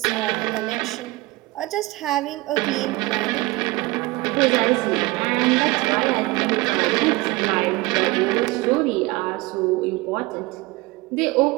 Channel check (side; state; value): left; quieter; 21.8 dB